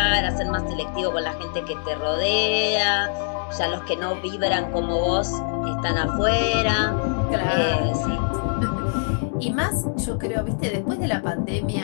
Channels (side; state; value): right; silent; digital silence